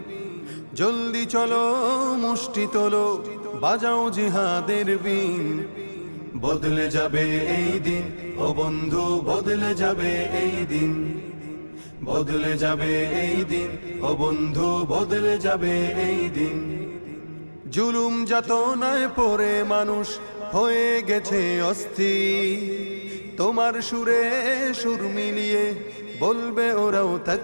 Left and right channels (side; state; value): both; inverted; correlation -1.00